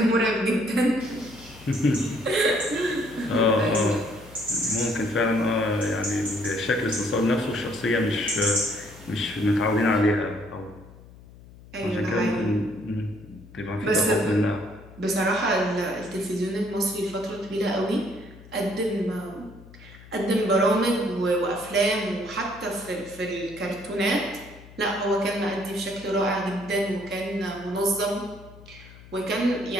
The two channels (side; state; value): left; noise; hum, 20 dB below the sound